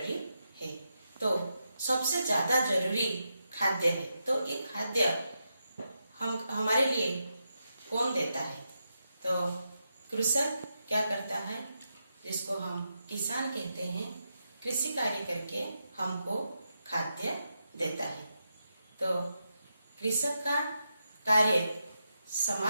है। तो सबसे ज्यादा जरूरी खाद्य है। तो ये खाद्य हमारे लिए कौन देता है? तो कृषक क्या करता है, जिसको हम किसान कहते हैं, कृषि कार्य करके हमको खाद्य देता है। तो कृषक का कार्य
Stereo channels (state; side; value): inverted; both; correlation -0.85